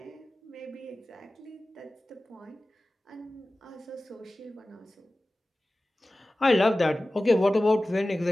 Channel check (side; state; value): both; normal; correlation 0.96